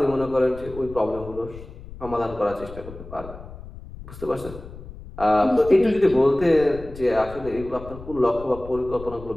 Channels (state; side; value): noise; left; rumble, 15 dB below the sound